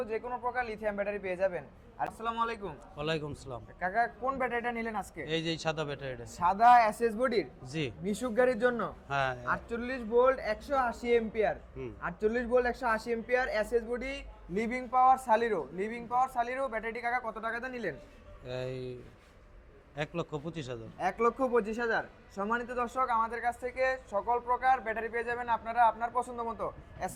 যে কোনো প্রকার লিথিয়াম ব্যাটারি পেয়ে যাবেন। আসসালামু আলাইকুম। ওয়ালাইকুম সালাম। কাকা, কোন ব্যাটারিটা নিলেন আজকে? এই যে সাদা ব্যাটারিটা। সাদা এসএস বডির জি। মিশুক গাড়ির জন্য হ্যাঁ। 48 volt 180 ampere, 48 volt 180 ampere SS body living power সালিরো ব্যাটারিটি কাকা কত টাকাতে নিলেন? এই 1,25,000। 1,25,000। সম্মানিত দর্শক, আমাদের কাছ থেকে সকল প্রকার ব্যাটারি পেয়ে যাবেন আপনারা আপনার পছন্দ মতো।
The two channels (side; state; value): both; identical; correlation 1.00